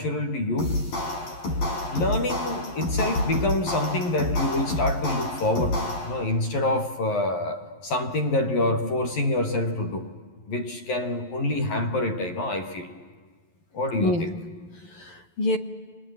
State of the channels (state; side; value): late; right; 11 ms